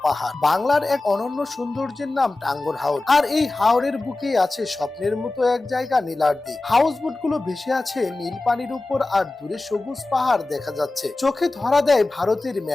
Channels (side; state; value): right; quieter; 3.0 dB